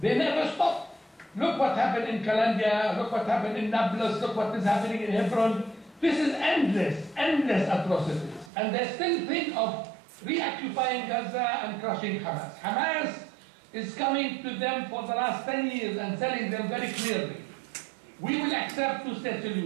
They never stop. Look what happened in Calandia, look what happened in Nablus, look what is happening in Hebron. This is endless, endless atrocities. And they still think of reoccupying Gaza and crushing Hamas. Hamas is coming to them for the last 10 years and telling them very clearly, we will accept two-state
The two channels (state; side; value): drops out; left; at 8.5 s